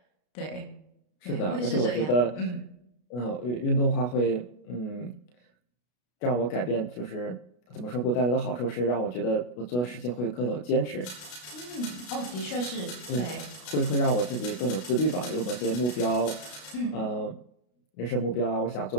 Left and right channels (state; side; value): late; right; 33 ms